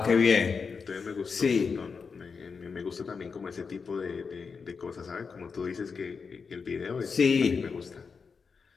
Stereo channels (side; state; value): right; quieter; 5.4 dB